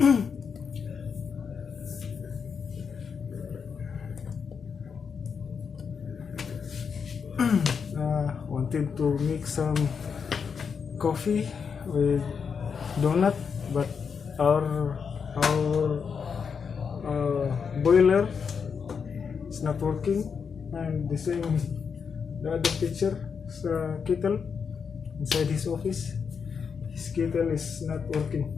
Wanted to make some coffee with donut, but our boiler is not working, and the same the other picture kettle inside his office. His kettle is not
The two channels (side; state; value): right; quieter; 6.2 dB